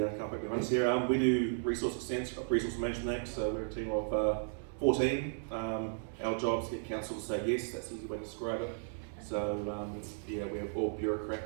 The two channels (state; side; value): silent; left; digital silence